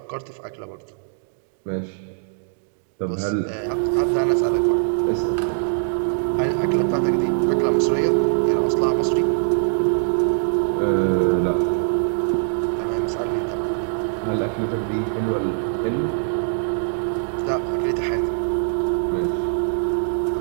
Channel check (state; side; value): silent; left; digital silence